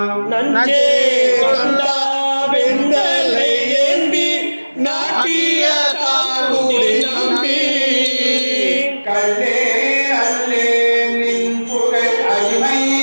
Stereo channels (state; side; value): inverted; both; correlation -1.00